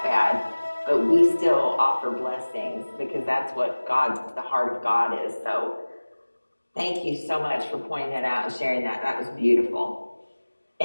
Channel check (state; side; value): inverted; both; correlation -1.00